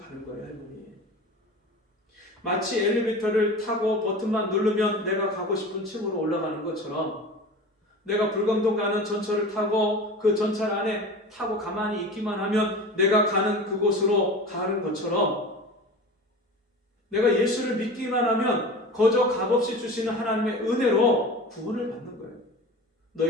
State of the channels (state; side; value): normal; both; correlation 0.34